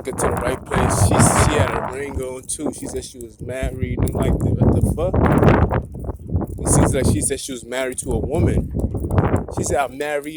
her to the right place. She had a ring on too. She said she was married. I'm like, what the fuck? It seems like she said she was married to a woman. She said I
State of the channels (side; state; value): both; identical; correlation 1.00